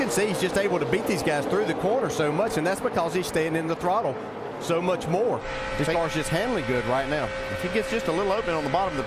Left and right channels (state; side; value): identical; both; correlation 1.00